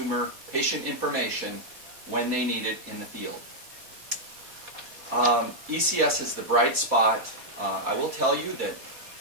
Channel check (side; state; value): left; late; 4.1 ms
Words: patient information when they need it in the field. ECS is the bright spot. I will tell you that